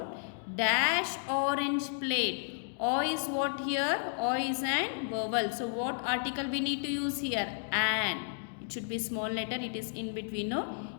dash orange plate. O is what here? O is an vowel. So what article we need to use here? An. It should be small letter. It is in between,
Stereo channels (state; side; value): silent; right; digital silence